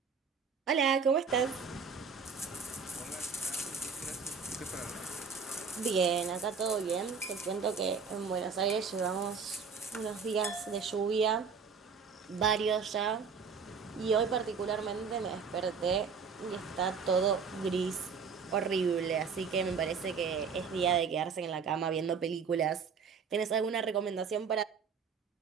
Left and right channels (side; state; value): left; quieter; 5.7 dB